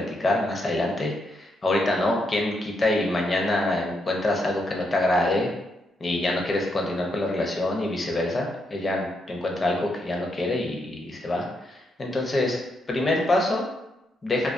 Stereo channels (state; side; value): normal; both; correlation 0.80